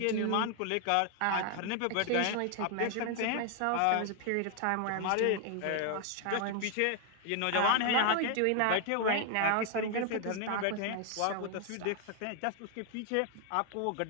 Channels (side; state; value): both; different; correlation 0.00